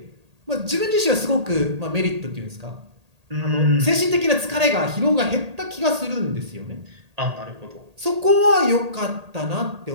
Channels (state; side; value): late; left; 1.8 ms